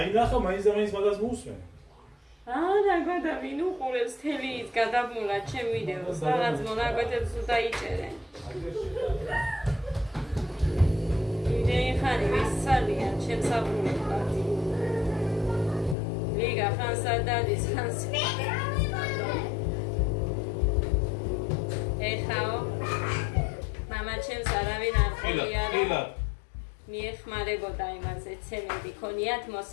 ნახა მაინც და მაინც მაგას მოусმენ. რა გადა ვინ უყურებს თელი ის გადაბმულა ჩემ ვიდეოს რაღაც მონაკვეთებს დაიჭერენ. იმდენი ხანი ვისწავლიან ჩემს აბურებად. ლიგა ხანსა დადის ხანს. ეხაო მამა ჩემს არავინ არ ყოფილა. მიეხმარებოდა იმაზე ცემენტი ქონიათ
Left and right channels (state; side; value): drops out; right; at 16.0 s